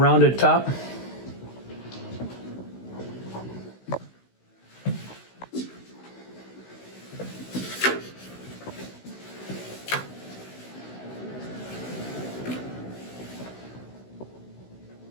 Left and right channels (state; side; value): late; right; 16 ms